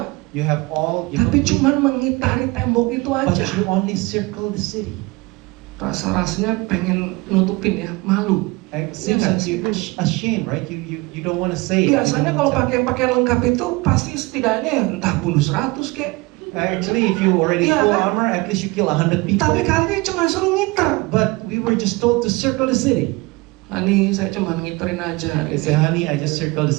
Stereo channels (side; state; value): left; quieter; 23.9 dB